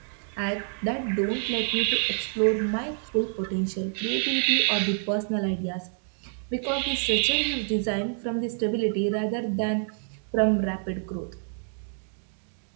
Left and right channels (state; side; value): silent; left; 60 dB below the other